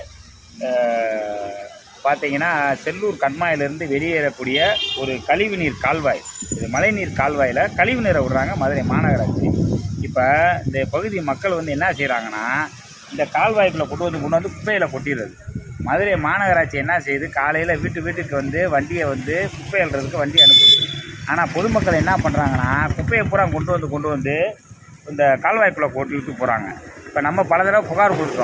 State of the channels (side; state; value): both; identical; correlation 1.00